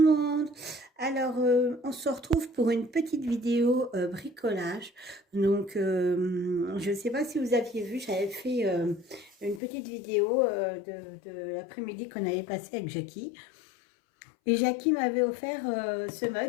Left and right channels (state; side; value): drops out; right; at 9.6 s